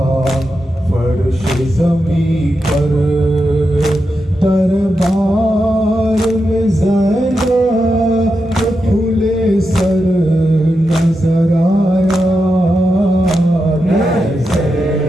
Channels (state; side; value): normal; both; correlation 0.87